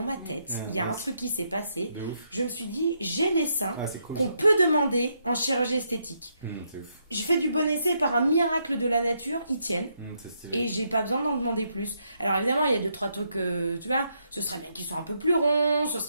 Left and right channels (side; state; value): both; inverted; correlation -0.78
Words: ma tête, il y a un truc qui s'est passé. De ouf. Je me suis dit, j'ai les seins Ah, c'est cool. qu'on peut demander en chirurgie esthétique. C'est ouf. J'ai fait du bon essai par un miracle de la nature, ils tiennent. C'est stylé. Et j'ai pas besoin d'en demander plus. Alors évidemment, il y a 2-3 trucs, tu vois, ce serait bien qu'ils soient un peu plus ronds, ce